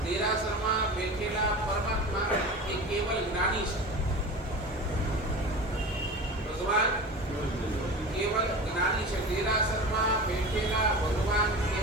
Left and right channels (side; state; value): both; normal; correlation 0.32